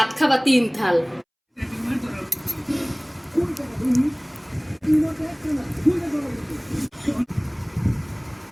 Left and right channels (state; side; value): identical; both; correlation 1.00